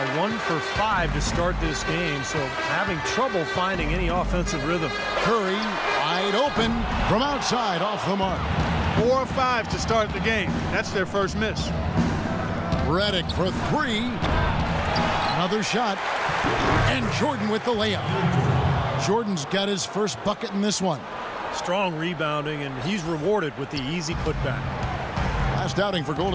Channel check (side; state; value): both; identical; correlation 1.00